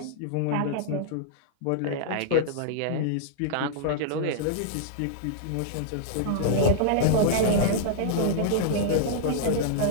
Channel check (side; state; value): both; different; correlation -0.02